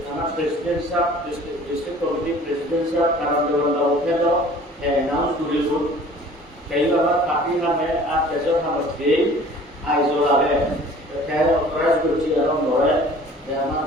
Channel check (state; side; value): normal; both; correlation 0.48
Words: আমার প্রেসিডেন্ট সাহেব ডিস্ট্রিক্ট কমিটি প্রেসিডেন্ট সাহেব কারণ দেওয়া ওঠে তো অ্যানাউন্স করে कई बार काफी हमें आज जैसे हम स्टे आइसोला है क्या ऑथराइज करती है हम लोग है हमारा